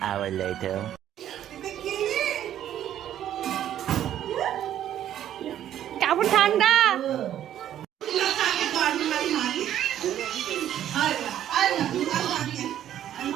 hour later. কেমন ঠান্ডা?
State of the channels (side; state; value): left; quieter; 11.2 dB